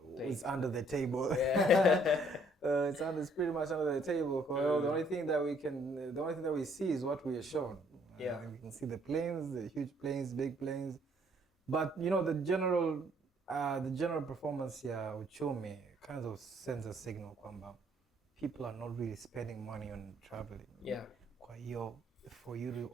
under the table. It's pretty much under the table. The only thing that we see is what we are shown. We can see the planes, the huge planes, big planes. But the general the general performance ya uchumi kind of sends a signal kwamba people are not really spending money on traveling. Yeah. Kwa hiyo for you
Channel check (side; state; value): both; normal; correlation 0.64